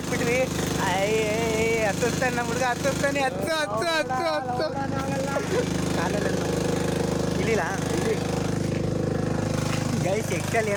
ಹತ್ತುತ್ತಾನೆ ನಮ್ಮ ಹುಡುಗ, ಹತ್ತುತ್ತಾನೆ. ಹತ್ತು ಕಾಲಲ್ಲಿ ಇಲ್ಲಿಲ್ಲ ಗೈಸ್. ಎಕ್ಸಲ್ಲಿ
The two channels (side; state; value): both; identical; correlation 1.00